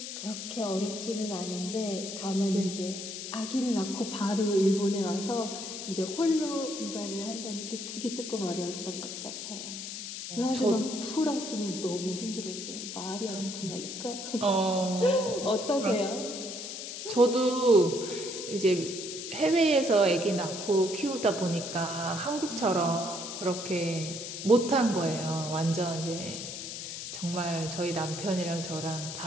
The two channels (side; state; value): left; noise; hiss, 7 dB below the sound